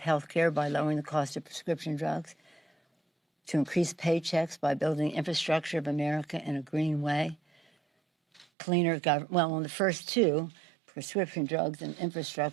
care by lowering the cost of prescription drugs, to increase paychecks by building infrastructure of America in a green way, cleaner government. Well, on the first two, prescription drugs and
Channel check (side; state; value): left; drops out; at 8.5 s